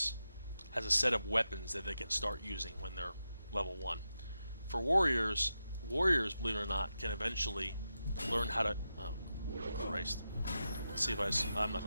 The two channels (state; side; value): inverted; both; correlation -0.89